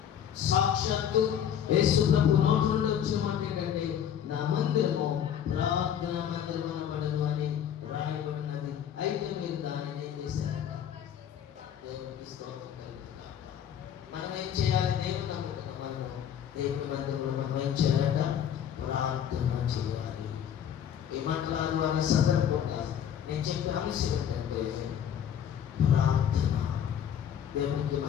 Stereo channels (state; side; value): quieter; right; 9.3 dB